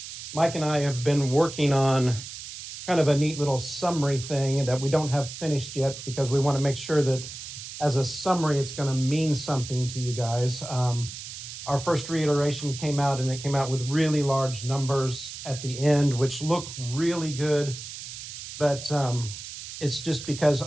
Mike and I have been working on kind of a neat little summary thing that we don't have finished yet because we want to make sure that as a summary, it's going to mean something to you guys. Our first reiteration came out and it came out with really large numbers at the end, which look really good. But it's just because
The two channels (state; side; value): noise; right; hiss, 11 dB below the sound